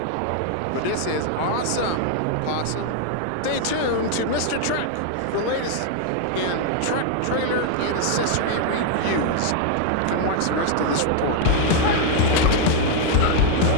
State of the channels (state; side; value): different; both; correlation 0.00